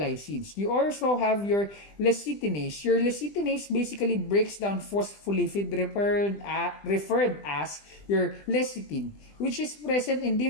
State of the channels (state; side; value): late; right; 20 ms